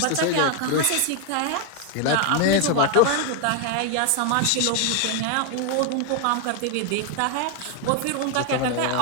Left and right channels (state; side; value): different; both; correlation 0.00